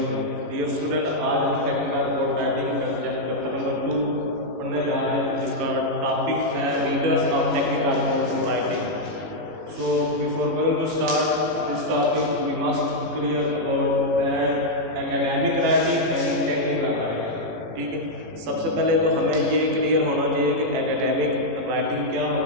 dear student. आज हम टेक्निकल बोर्ड राइटिंग का सब्जेक्ट चैप्टर नंबर 2 पढ़ने जा रहे हैं, जिसका टॉपिक है readers of technical board writing. So before going to start this topic we must clear about that academic writing and technical writing. ठीक है, सबसे पहले तो हमें ये क्लियर होना चाहिए कि एकेडमिक राइटिंग क्या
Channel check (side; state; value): left; late; 18 ms